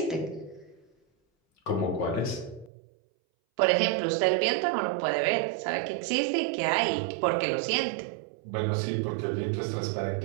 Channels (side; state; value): left; drops out; at 2.7 s